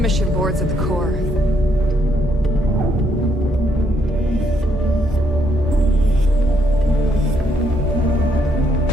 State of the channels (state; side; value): normal; both; correlation 0.72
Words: boards at the core.